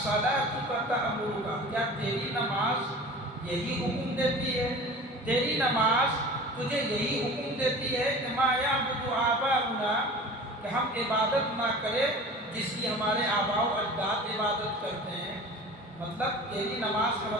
تأمرک، کیا تیری نماز یہی حکم دیتی ہے؟ تیری نماز تجھے یہی حکم دیتی ہے کہ ما یعبد آباؤنا، کہ ہم عبادت نہ کریں جس کی ہمارے آباء و اجداد عبادت کرتے ہیں. مطلب تیری نماز کا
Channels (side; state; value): both; normal; correlation 0.39